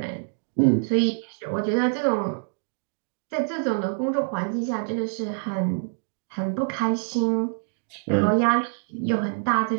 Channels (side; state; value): left; silent; digital silence